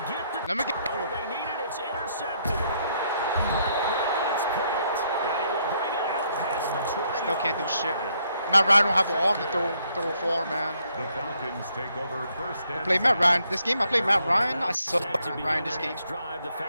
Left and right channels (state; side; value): inverted; both; correlation -0.72